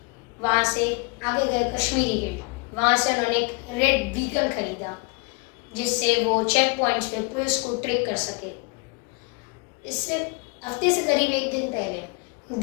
वहाँ से आगे गए कश्मीरी गेट। वहाँ से उन्होंने एक रेड व्हीकल खरीदा जिससे वो चेक पॉइंट्स पे पुलिस को ट्रैक कर सके। इससे हफ्ते से करीब 1 दिन पहले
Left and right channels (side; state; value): right; quieter; 32.9 dB